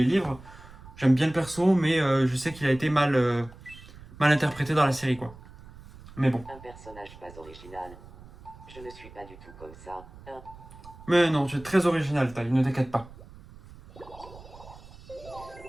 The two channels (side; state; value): right; noise; rumble, 19 dB below the sound